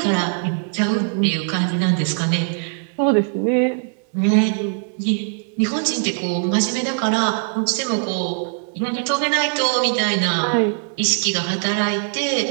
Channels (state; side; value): silent; left; 57 dB below the other